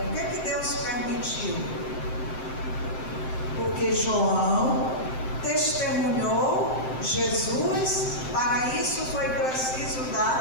Por que Deus permitiu? Porque João testemunhou Jesus, para isso foi preciso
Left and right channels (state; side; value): late; right; 7.7 ms